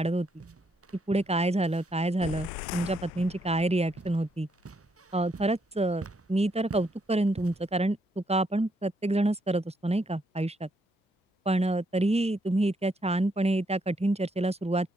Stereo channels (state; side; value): normal; both; correlation 0.75